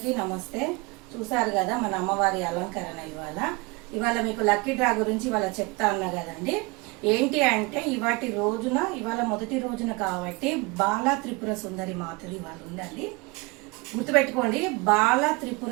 నమస్తే. చూసారు కదా మన అమ్మవారి అలంకరణ. ఇవాళ మీకు లక్కీ డ్రా గురించి ఇవాళ చెప్తా అన్నా కదండి. ఏంటి అంటే ఇవాళ మొదటి రోజున కాబట్టి బాలా త్రిపుర సుందరి మాతది ఇవాళ ఉందండి. గుర్తుపెట్టుకోండి, బాలా త్రిపుర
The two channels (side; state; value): left; quieter; 25.8 dB